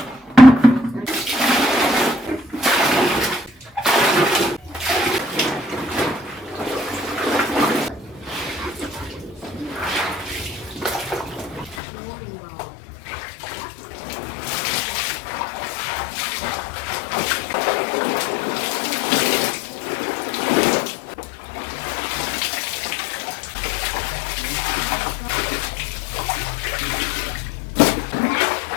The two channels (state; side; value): drops out; right; at 11.8 s